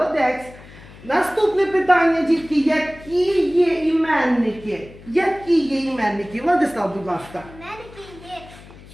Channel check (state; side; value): noise; left; hum, 20 dB below the sound